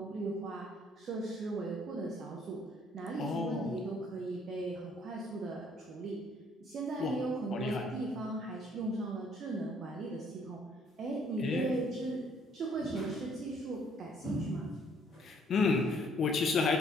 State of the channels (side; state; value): both; normal; correlation 0.63